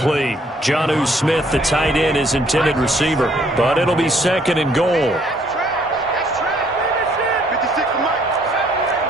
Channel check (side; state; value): both; normal; correlation 0.65